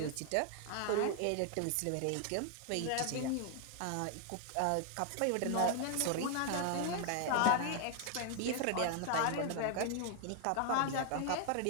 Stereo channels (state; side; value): different; both; correlation 0.00